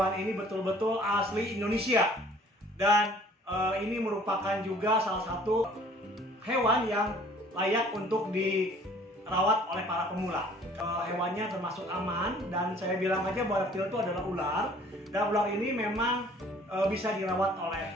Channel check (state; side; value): normal; both; correlation 0.54